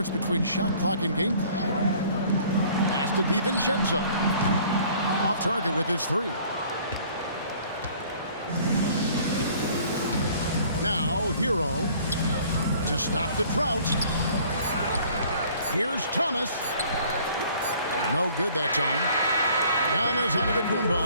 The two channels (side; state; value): both; inverted; correlation -0.54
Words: between shot clock and game clock. Pass to DiVincenzo. Off target with his three. Now Hero to stop the drought. Here's Thomas. No good that time. Giannis